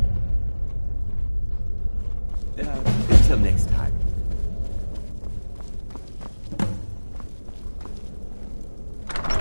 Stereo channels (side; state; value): both; inverted; correlation -1.00